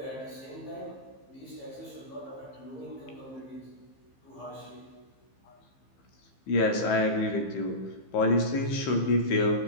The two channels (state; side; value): late; right; 15 ms